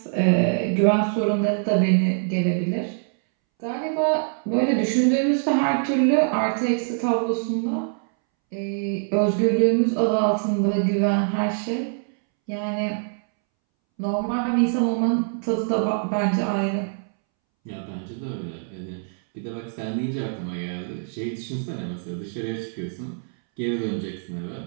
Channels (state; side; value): silent; left; 63 dB below the other